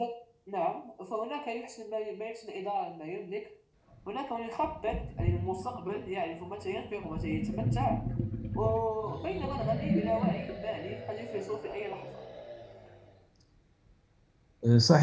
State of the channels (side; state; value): both; identical; correlation 1.00